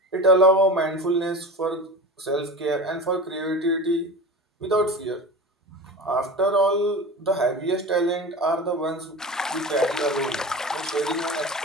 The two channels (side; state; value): both; normal; correlation 0.30